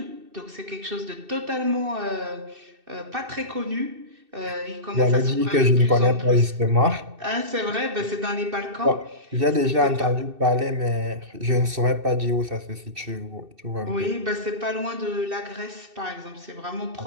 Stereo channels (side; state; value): left; late; 2.6 ms